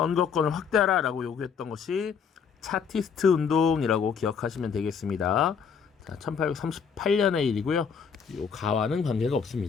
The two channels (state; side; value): quieter; right; 6.5 dB